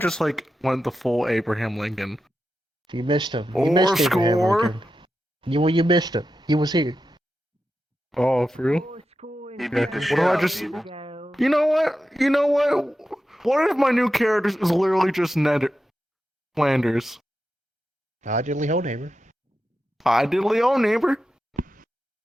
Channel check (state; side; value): normal; both; correlation 0.90